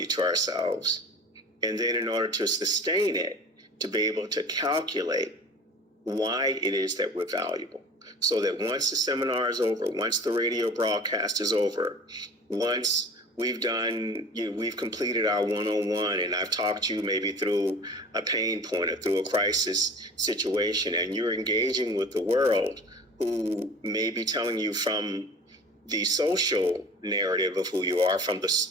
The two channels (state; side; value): normal; both; correlation 0.40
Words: to ourselves. And then in order to sustain it, to be able to calculate why it is that we're valuable. So that once the seminar is over, once the radio broadcast is over, once we've done, we've completed our one-on-one, and I've talked to you maybe through a pain point or through a crisis situation, and you're engaging with the world who may be telling you from the social narrative of who you are, from the